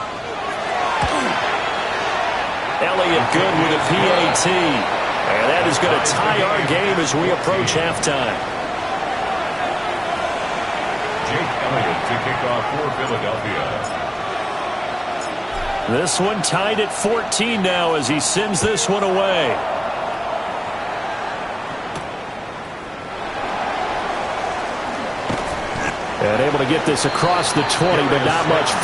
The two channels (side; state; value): both; identical; correlation 1.00